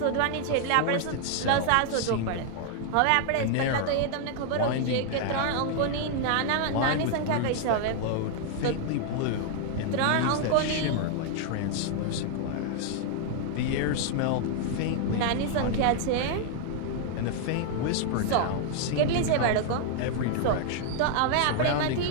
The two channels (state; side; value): different; both; correlation 0.00